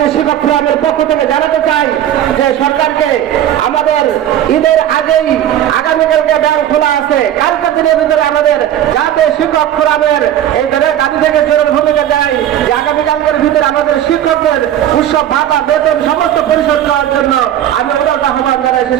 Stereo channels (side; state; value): left; quieter; 11.4 dB